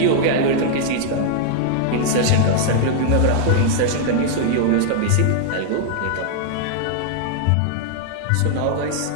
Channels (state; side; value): different; both; correlation -0.01